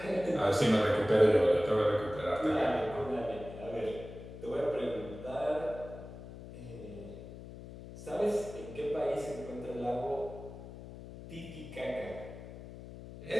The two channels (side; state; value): left; noise; hum, 13 dB below the sound